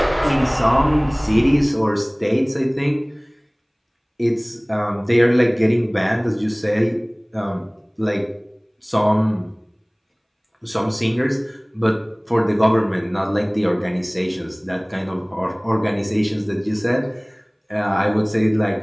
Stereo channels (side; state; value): both; identical; correlation 1.00